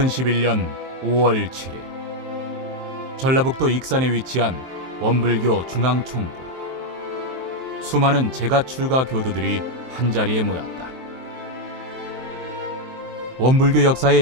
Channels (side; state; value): left; late; 23 ms